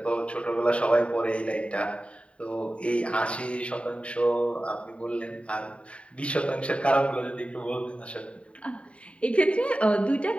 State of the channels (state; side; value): late; right; 0.062 ms